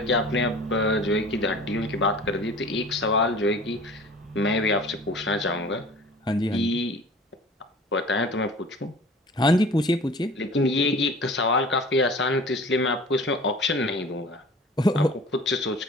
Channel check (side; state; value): both; normal; correlation 0.43